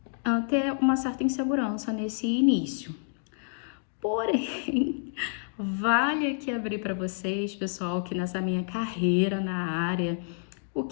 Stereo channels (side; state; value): right; silent; digital silence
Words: ter uma certa insegurança nesse início. Porém, vale aqui abrir para vocês, pessoal, que nessa minha carreira na área, o